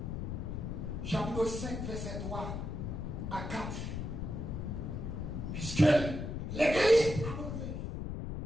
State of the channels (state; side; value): noise; left; rumble, 4 dB below the sound